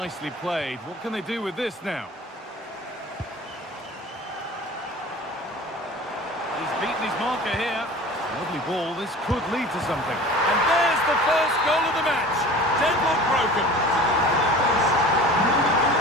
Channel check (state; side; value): normal; both; correlation 0.40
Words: played. What can they do with this now? He's beaten his marker here. Lovely ball. This could lead to something. And there's the first goal of the match. Deadlock broken.